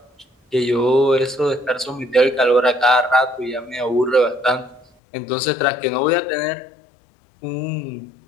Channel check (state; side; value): drops out; right; at 4.9 s